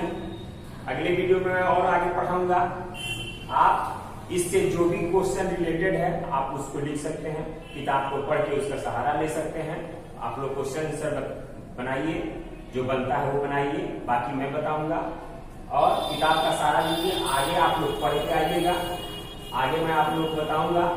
अगले वीडियो में मैं और आगे पढ़ाऊंगा। आप इससे जो भी क्वेश्चन रिलेटेड है आप उसको लिख सकते हैं, किताब को पढ़ के उसका सहारा ले सकते हैं। आप लोग क्वेश्चन आंसर बनाइए, जो बनता है वो बनाइए, बाकी मैं बताऊंगा। और किताब का सहारा लीजिए, आगे आप लोग पढ़ के आइएगा। आगे मैं आप लोग बताऊंगा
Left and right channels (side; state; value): both; identical; correlation 1.00